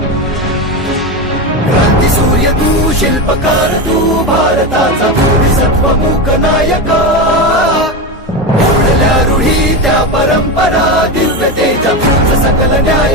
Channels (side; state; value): both; normal; correlation 0.17